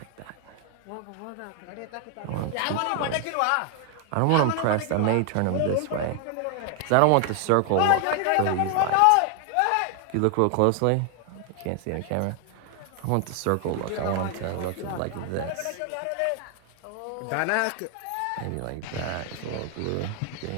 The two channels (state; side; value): different; both; correlation 0.00